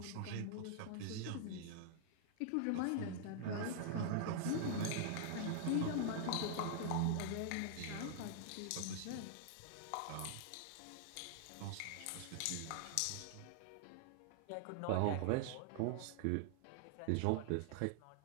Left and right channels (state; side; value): different; both; correlation -0.01